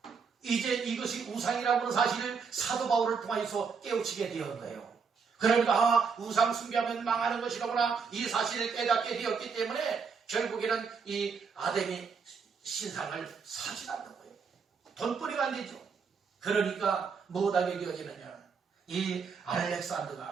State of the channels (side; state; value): left; quieter; 5.7 dB